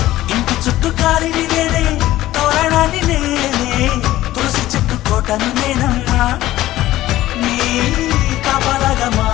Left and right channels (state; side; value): quieter; right; 15.3 dB